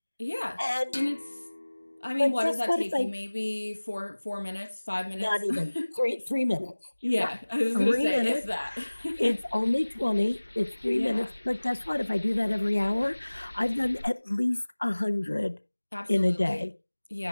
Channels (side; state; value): both; inverted; correlation -1.00